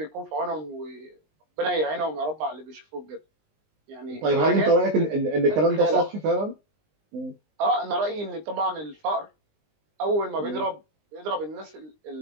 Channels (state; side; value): late; left; 19 ms